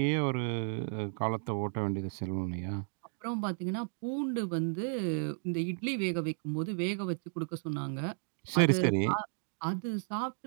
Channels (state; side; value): silent; left; digital silence